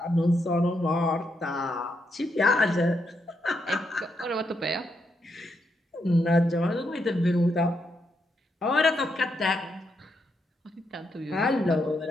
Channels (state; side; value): normal; both; correlation 0.80